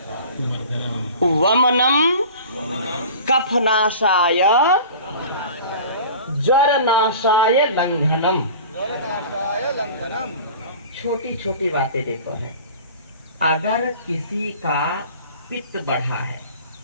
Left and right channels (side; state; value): both; inverted; correlation -0.40